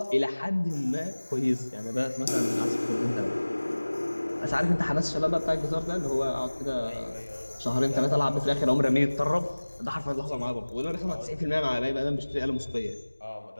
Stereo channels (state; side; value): inverted; both; correlation -1.00